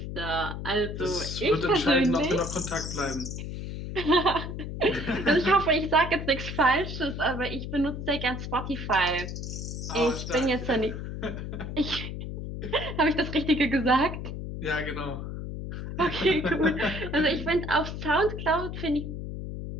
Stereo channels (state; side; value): noise; left; hum, 6 dB below the sound